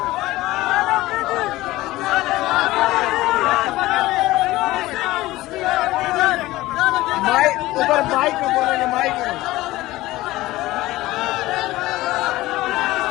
ऊपर माइक में बोलेंगे,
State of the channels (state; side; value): quieter; right; 17.7 dB